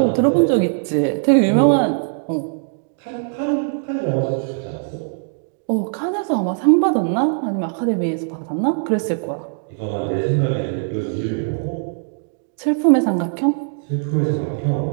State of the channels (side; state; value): left; silent; digital silence